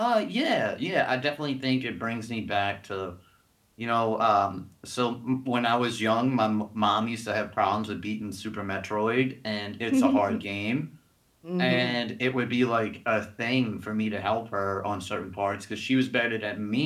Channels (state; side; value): identical; both; correlation 1.00